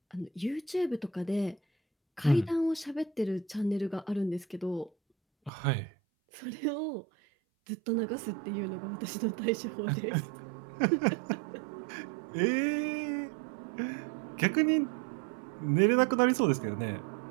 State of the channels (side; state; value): left; drops out; at 5.5 s